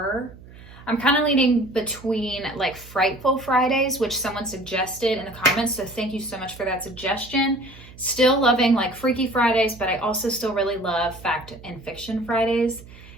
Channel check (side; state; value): right; noise; hum, 19 dB below the sound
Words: I'm kind of leaning between like Frightful Fridays, which someone suggested in the comments, so thank you so much for that suggestion. Still loving like Freaky Fridays, but I also still really love Fact and Fiction Fridays.